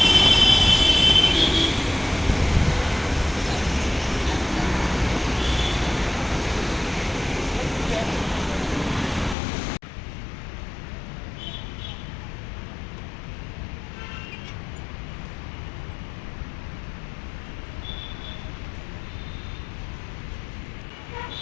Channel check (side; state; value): right; drops out; at 9.3 s